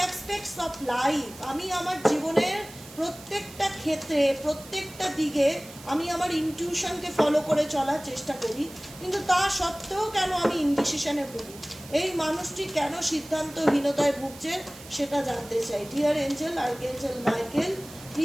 aspects of life. আমি আমার জীবনের প্রত্যেকটা ক্ষেত্রে, প্রত্যেকটা দিকে আমি আমার ইনটিউশনকে ফলো করে চলার চেষ্টা করি, কিন্তু তা সত্ত্বেও কেন আমি ইনডিসিশনে ভুগি? এই মানুষটি কেন সিদ্ধান্তহীনতায় ভুগছে সেটা জানতে চাই। Dear angel, archangel Michael,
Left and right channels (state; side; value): noise; right; hiss, 18 dB below the sound